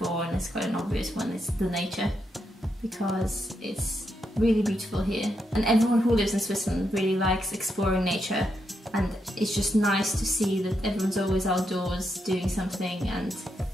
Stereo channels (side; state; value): both; normal; correlation 0.82